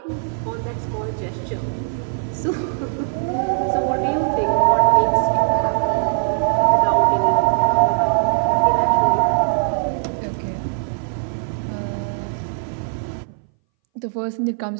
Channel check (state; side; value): silent; left; 62 dB below the other